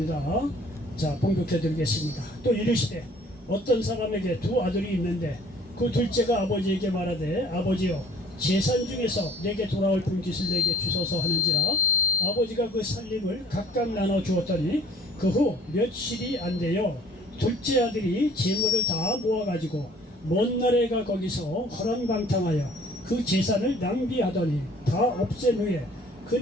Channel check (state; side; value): normal; both; correlation 0.55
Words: 자, 봉독해 드리겠습니다. 또 이르시되 어떤 사람에게 두 아들이 있는데 그 둘째가 아버지에게 말하되 아버지여 재산 중에서 내게 돌아올 분깃을 내게 주소서 하는지라 아버지가 그 살림을 각각 나눠 주었더니 그 후 며칠이 안 되어 둘째 아들이 재물을 다 모아가지고 먼 나라가 거기서 허랑방탕하여 그 재산을 낭비하더니 다 없앤 후에 그